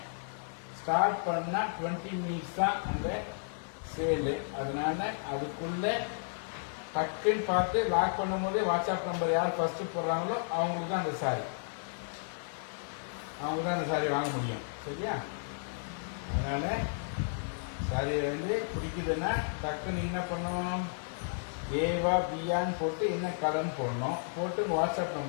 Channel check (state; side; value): silent; right; digital silence